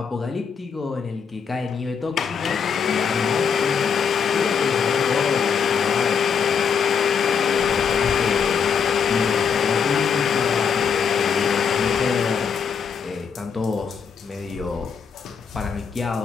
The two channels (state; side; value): quieter; right; 6.6 dB